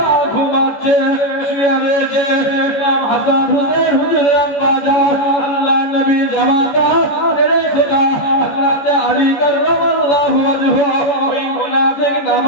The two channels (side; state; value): right; late; 14 ms